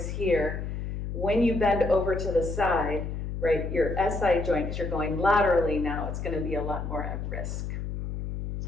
here, when you bend over to the side, right, your SI joint, because you're going laterally now, it's going to be a lot more at risk.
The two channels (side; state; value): left; noise; hum, 5 dB below the sound